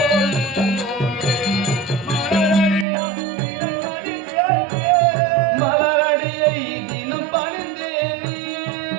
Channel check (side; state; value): left; drops out; at 2.9 s